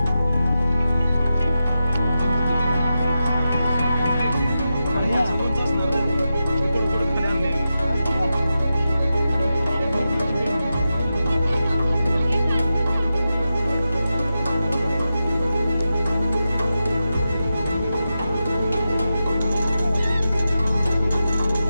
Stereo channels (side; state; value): both; inverted; correlation -0.90